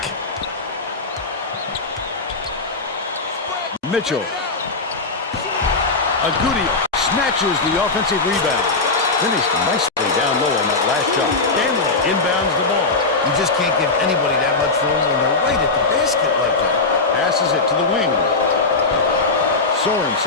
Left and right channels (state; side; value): quieter; right; 3.7 dB